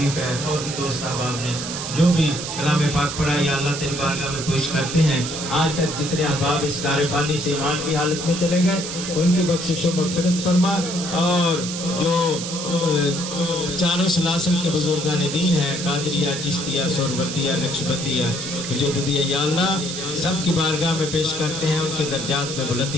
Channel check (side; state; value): right; noise; hiss, 6 dB below the sound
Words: ہے۔ اور دوست احباب نے جو بھی کلام پاک پڑھا یا اللہ تیری بارگاہ میں پیش کرتے ہیں، آج تک جتنے احباب اس دار فانی سے ایمان کی حالت میں چلے گئے ان کی بخشش و مغفرت فرما، اور جو چاروں سلاسل کے بزرگان دین ہیں، قادریہ، چشتیہ، سہروردیہ، نقشبندیہ، مجددیہ، یا اللہ سب کی بارگاہ میں پیش کرتے ہیں، ان کے درجات میں